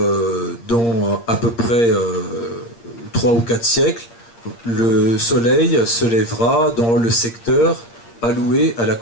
dans à peu près 3 ou 4 siècles, le Soleil se lèvera dans le secteur alloué à la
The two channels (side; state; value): right; late; 8.6 ms